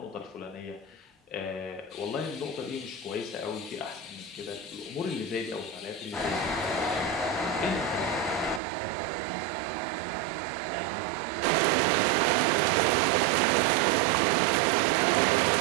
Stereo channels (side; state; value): left; drops out; at 8.6 s